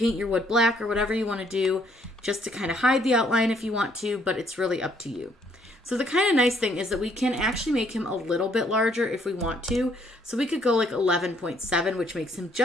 your wood black or whatever you want to do just to kind of hide the outline if you want to, but it's really up to you. So the kind of nice thing is that we can actually make him a little bit larger if we want to. So we could go like 11.7, which makes him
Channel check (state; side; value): normal; both; correlation 0.67